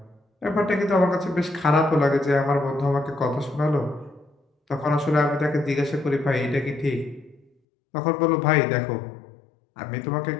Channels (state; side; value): drops out; right; at 7.5 s